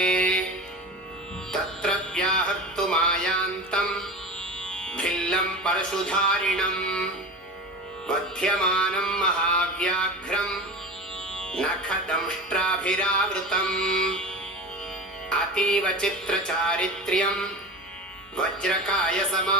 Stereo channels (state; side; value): normal; both; correlation 0.30